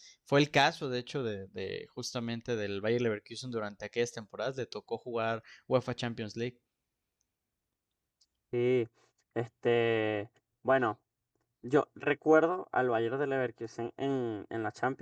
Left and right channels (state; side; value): identical; both; correlation 1.00